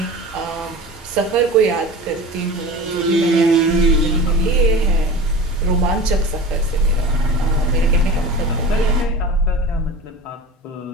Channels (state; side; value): normal; both; correlation 0.35